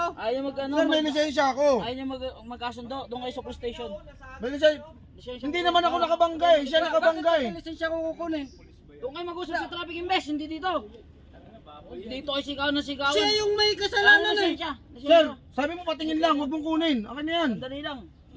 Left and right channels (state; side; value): identical; both; correlation 1.00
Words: Ayaw mag ano. Sir, may lisensya ako. Ayaw niya magkasundo. Doon kayo sa police station. May lisensya. Lisensya. Hindi naman ako nakabangga eh. Siya nakabangga eh. Bakit may lisensya ko kukunin? Doon kayo mag-usap sa traffic invest. Hindi dito. Dito kayo sigaw na sigawan. Siya yung may kasalanan eh. Lisensya. Sir, sabi mo patingin lang, huwag mong kunin. Akin na yan. Dali lang.